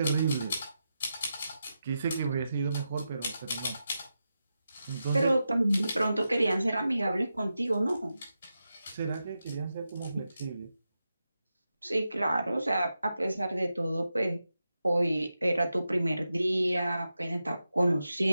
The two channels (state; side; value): inverted; both; correlation -0.89